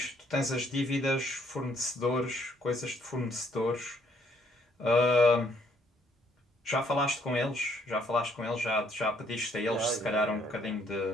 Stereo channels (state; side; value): normal; both; correlation 0.67